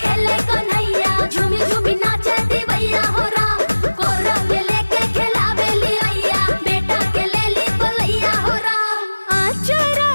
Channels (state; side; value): inverted; both; correlation -1.00